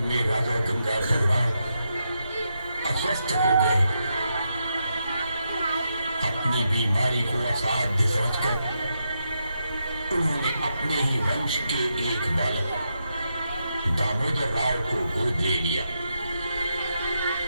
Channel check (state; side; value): inverted; both; correlation -0.84